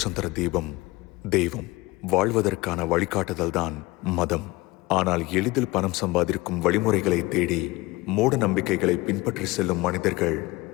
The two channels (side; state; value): right; quieter; 21.4 dB